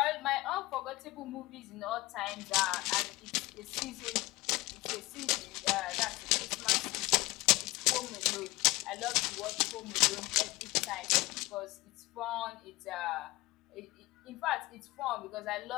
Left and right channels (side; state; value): right; quieter; 20.7 dB